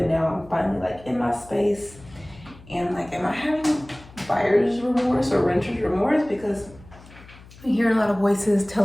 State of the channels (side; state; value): left; noise; hum, 21 dB below the sound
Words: now I'm finally like in my space. And like, am I having buyer's remorse or renter's remorse? Because I'm hearing a lot of voices